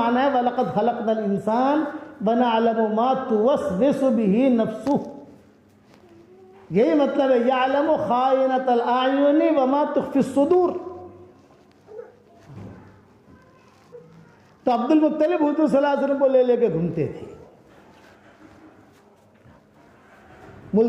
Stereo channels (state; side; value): identical; both; correlation 1.00